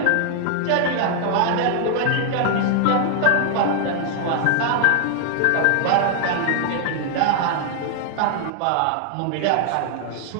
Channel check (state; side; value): different; both; correlation 0.00